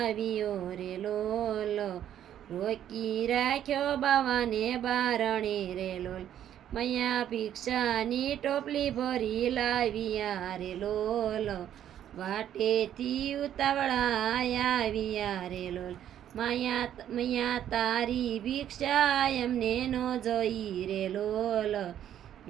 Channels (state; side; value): quieter; left; 10.7 dB